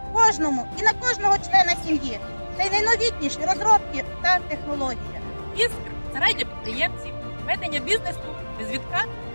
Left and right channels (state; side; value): inverted; both; correlation -1.00